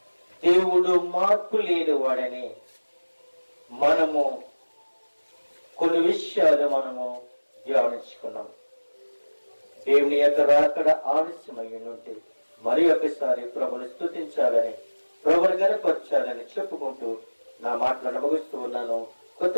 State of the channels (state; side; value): inverted; both; correlation -1.00